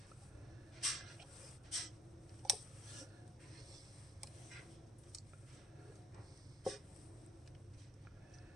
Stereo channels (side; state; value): both; normal; correlation 0.62